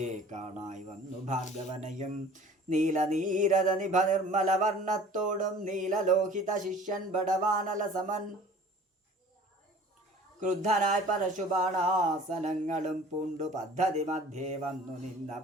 കാണായി വന്നു ഭാർഗവനെയും. നീലനീരത നിഭ നിർമ്മല വർണ്ണത്തോടും നീലലോഹിത ശിഷ്യൻ ബടവാനല സമൻ. ക്രുദ്ധനായി പരശുബാണാസനങ്ങളും പൂണ്ടു പദ്ധതി മധ്യേ വന്നു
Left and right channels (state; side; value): normal; both; correlation 0.47